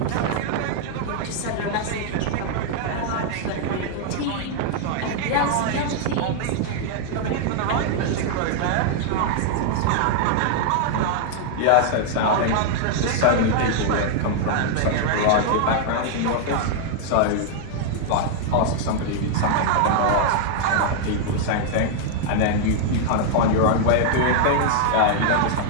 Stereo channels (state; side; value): different; both; correlation 0.00